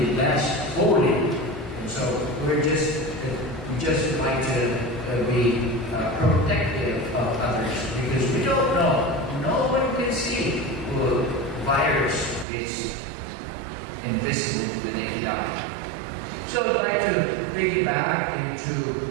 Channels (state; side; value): drops out; left; at 12.5 s